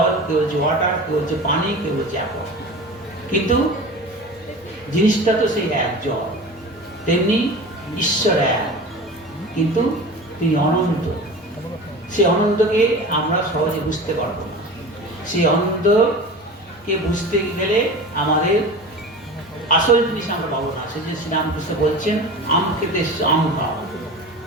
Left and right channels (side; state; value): both; normal; correlation 0.34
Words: কেউ বলছে ওয়াটার, কেউ বলছে পানি, কেউ বলছে অ্যাপল, কিন্তু জিনিসটা তো সেই এক জল। তেমনি ঈশ্বর এক, কিন্তু তিনি অনন্ত। সেই অনন্তকে আমরা সহজে বুঝতে পারবো না। সেই অনন্তকে বুঝতে গেলে আমাদের আসল জিনিস আমরা পাবো না। সেই যে শ্রীরামকৃষ্ণ বলছেন আম খেতে আম খাও,